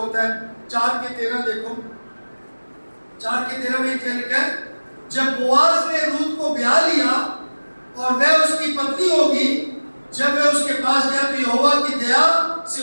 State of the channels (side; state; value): both; inverted; correlation -1.00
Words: है, 4:13 देखो, 4:13 में क्या लिखा है, जब बोआज ने रूत को ब्याह लिया और वह उसकी पत्नी होगी, जब वह उसके पास गया तो यहोवा की दया